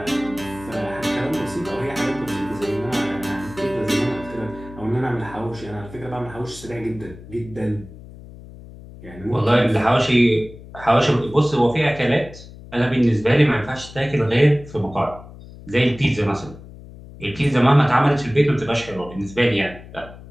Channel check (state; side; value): noise; left; hum, 17 dB below the sound